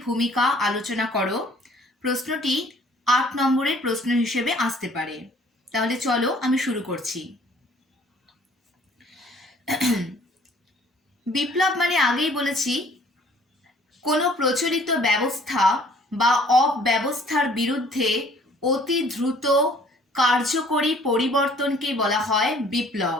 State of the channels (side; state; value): both; normal; correlation 0.56